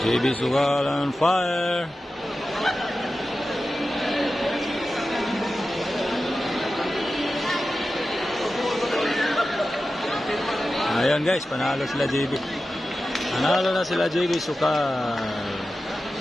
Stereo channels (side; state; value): both; normal; correlation 0.93